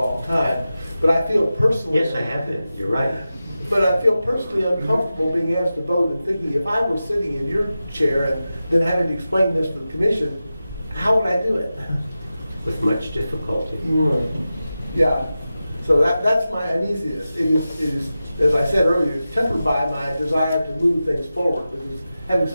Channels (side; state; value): both; inverted; correlation -0.93